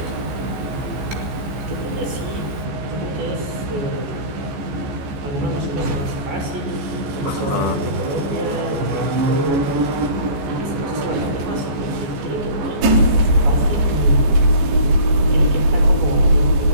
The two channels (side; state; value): left; late; 14 ms